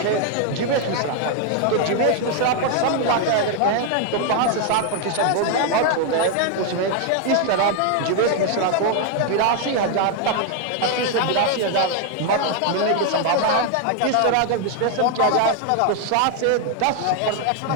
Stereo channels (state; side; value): different; both; correlation 0.00